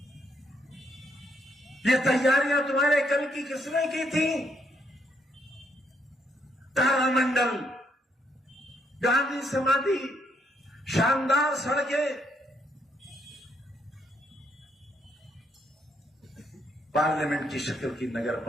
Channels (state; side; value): normal; both; correlation 0.74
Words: ये तैयारियां तुम्हारे कल की किसने की थी? तारामंडल, गांधी समाधि, शानदार सड़कें। पार्लियामेंट की शक्ल की नगर